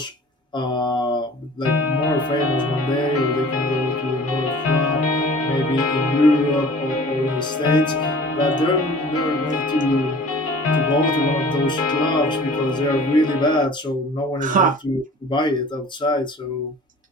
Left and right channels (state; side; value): normal; both; correlation 0.46